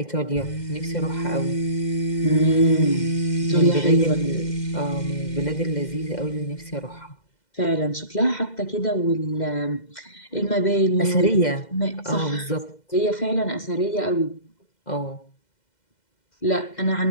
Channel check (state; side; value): late; right; 2.0 ms